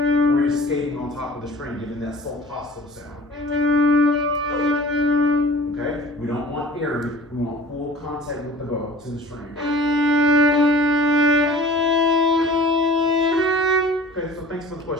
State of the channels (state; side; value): normal; both; correlation 0.45